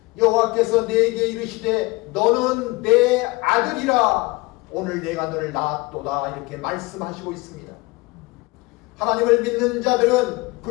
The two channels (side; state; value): right; quieter; 23.6 dB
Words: 여호와께서 내게 이르시되 너는 내 아들이라. 오늘 내가 너를 낳았도다. 이렇게 말씀하시고 있습니다. 하나님을 믿는 자들은